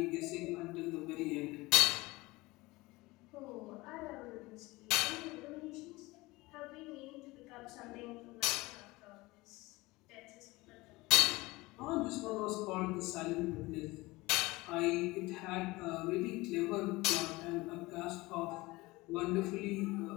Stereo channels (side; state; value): right; quieter; 21.3 dB